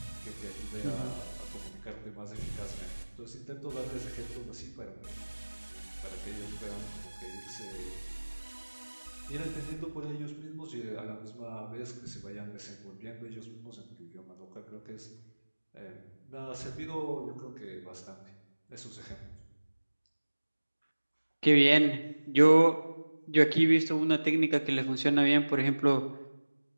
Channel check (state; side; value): inverted; both; correlation -1.00